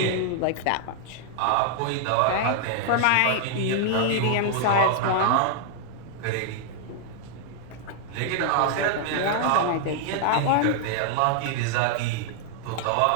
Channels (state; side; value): different; both; correlation 0.00